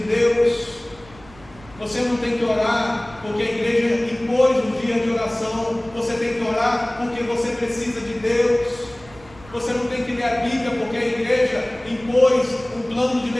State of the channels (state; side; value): noise; right; rumble, 23 dB below the sound